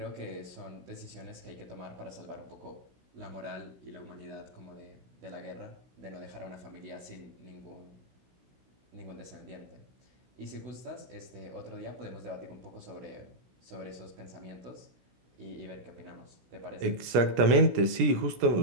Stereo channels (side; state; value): left; late; 17 ms